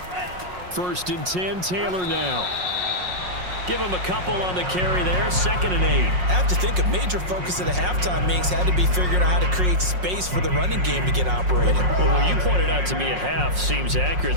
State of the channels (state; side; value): late; left; 5.5 ms